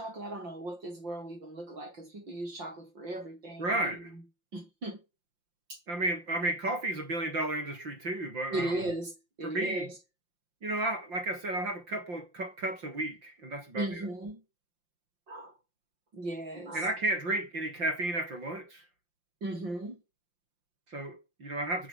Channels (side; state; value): left; late; 5.7 ms